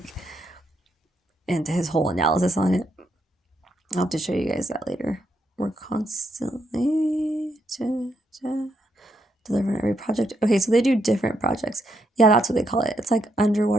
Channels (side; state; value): both; normal; correlation 0.78